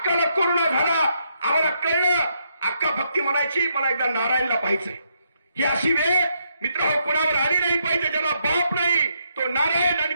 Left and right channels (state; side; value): inverted; both; correlation -0.76